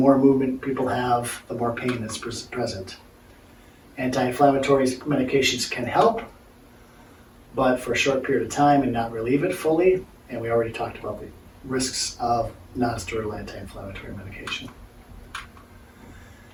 movement people have, the more pain that's present. Anti-inflammatory medications can help, but for a short period of time and not relieve it fully. And we already talked about the risks of non-steroidal anti-inflammatory medication.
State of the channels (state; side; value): identical; both; correlation 1.00